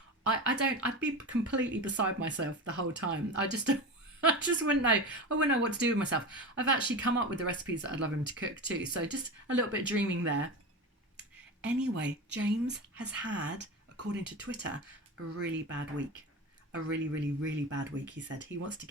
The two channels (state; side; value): normal; both; correlation 0.25